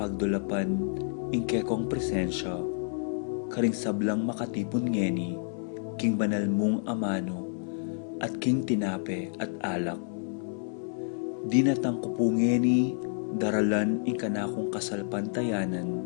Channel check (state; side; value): silent; right; 58 dB below the other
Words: ing kekong presensya, karing sablang makatipon ngeni, king banal mong amano, at king tinape at alak. Dinatang ko po ngeni, daralan ing kanakong kasalpantayanan,